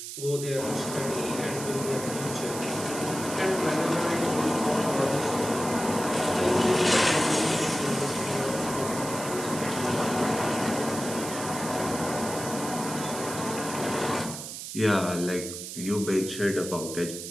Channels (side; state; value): right; noise; hiss, 8 dB below the sound